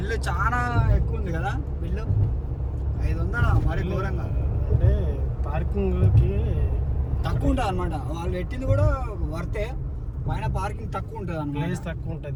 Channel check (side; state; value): both; identical; correlation 1.00